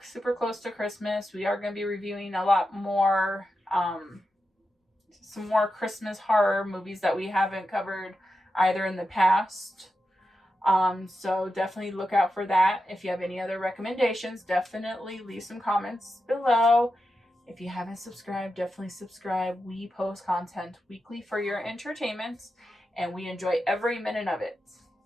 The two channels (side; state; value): both; normal; correlation 0.89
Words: super close to Christmas. We are going to be reviewing a lot more, some more Christmas horror movies that we haven't covered either in the past. So definitely look out for that. If you have any other recommendations, definitely leave some comments below. If you haven't subscribed, definitely subscribe. We post content weekly for your entertainment, and we enjoy every minute of it.